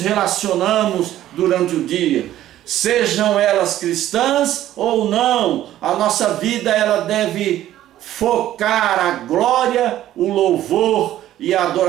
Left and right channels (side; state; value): left; quieter; 13.1 dB